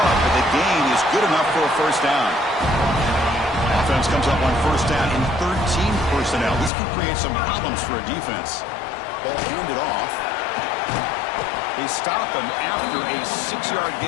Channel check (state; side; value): drops out; right; at 6.7 s